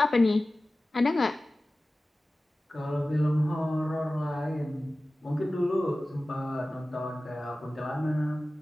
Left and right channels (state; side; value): normal; both; correlation 0.96